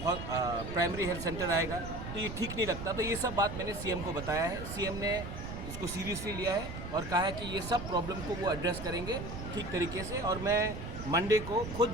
प्राइमरी हेल्थ सेंटर आएगा तो ये ठीक नहीं लगता। तो ये सब बात मैंने सीएम को बताया है, सीएम ने इसको सीरियसली लिया है और कहा है कि ये सब प्रॉब्लम को वो एड्रेस करेंगे ठीक तरीके से। और मैं मंडे को खुद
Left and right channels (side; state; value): right; noise; rumble, 8 dB below the sound